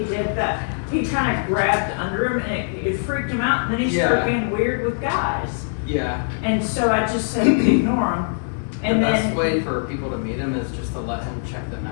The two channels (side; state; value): right; silent; 64 dB below the other